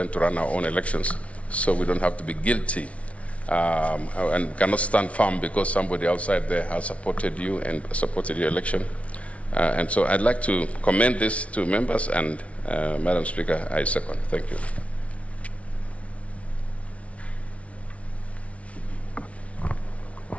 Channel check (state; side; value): late; right; 0.064 ms